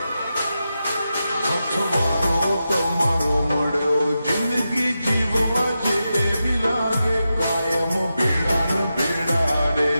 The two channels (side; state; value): both; inverted; correlation -0.89